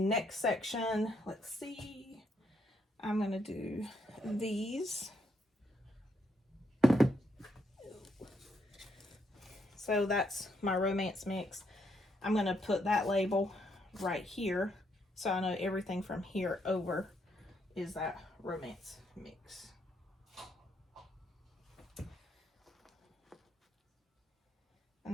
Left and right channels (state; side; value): normal; both; correlation 0.75